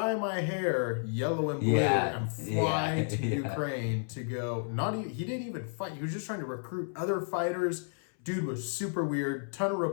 my hair yellow and blue and fly to Ukraine to go. He didn't even fight. He was just trying to recruit other fighters. Dude was super weird. Ton of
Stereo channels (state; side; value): silent; right; 57 dB below the other